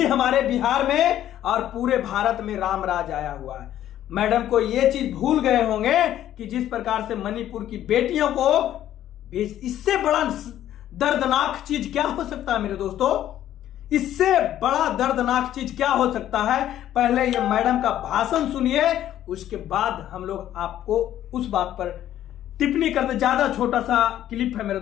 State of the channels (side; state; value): right; quieter; 12.0 dB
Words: हमारे बिहार में और पूरे भारत में रामराज आया हुआ है। मैडम को यह चीज भूल गए होंगे कि जिस प्रकार से मणिपुर की बेटियों को, इससे बड़ा दर्दनाक चीज क्या हो सकता है मेरे दोस्तों, इससे बड़ा दर्दनाक चीज क्या हो सकता है। पहले ये मैडम का भाषण सुनिए, उसके बाद हम लोग आपको उस बात पर टिप्पणी करते। ज्यादा छोटा सा क्लिप है मेरे